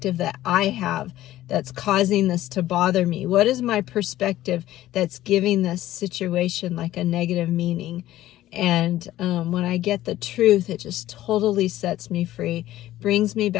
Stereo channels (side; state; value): right; quieter; 14.5 dB